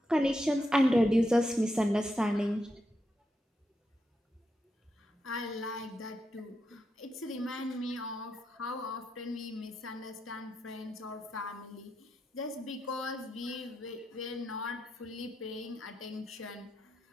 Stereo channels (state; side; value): normal; both; correlation 0.84